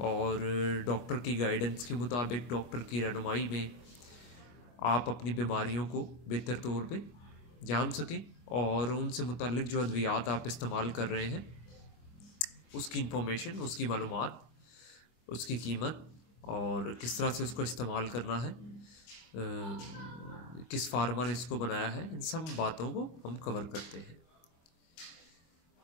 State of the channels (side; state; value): right; late; 25 ms